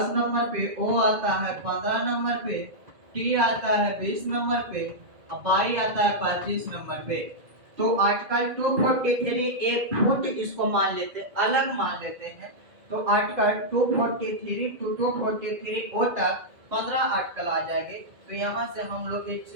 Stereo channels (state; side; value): late; left; 2.0 ms